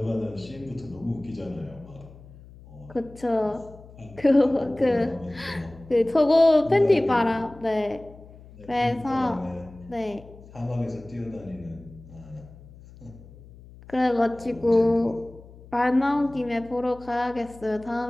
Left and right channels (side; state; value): left; noise; hum, 20 dB below the sound